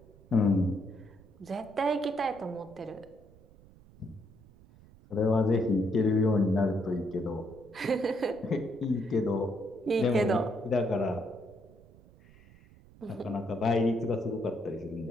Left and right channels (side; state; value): right; noise; rumble, 24 dB below the sound